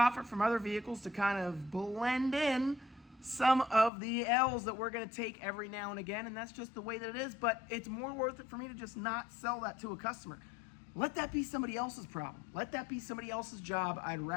from other vehicles to kind of blend in some of the L's that we're going to take every now and again, and that's just the way that it is. But it's more worth it for me to just not sell that to a customer. Let that be somebody else's problem. Let that be somebody else's job. I'd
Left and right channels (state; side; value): drops out; right; at 3.9 s